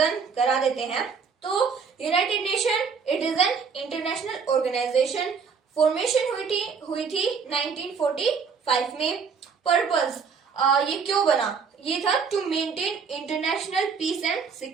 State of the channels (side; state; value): left; quieter; 5.8 dB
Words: करा देते हैं। तो United Nation it is an international organisation. Formation हुई थी 1945 में। पर्पस ये क्यों बना, ये था to maintain international peace and